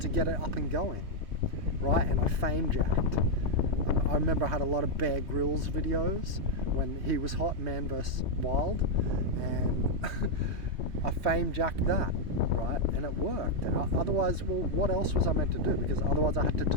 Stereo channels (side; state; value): left; late; 3.1 ms